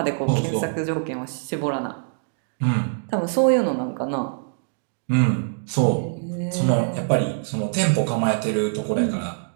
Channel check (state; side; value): silent; left; digital silence